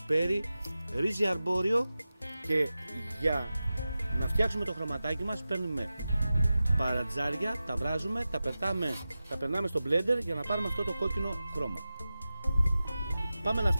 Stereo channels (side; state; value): both; inverted; correlation -0.94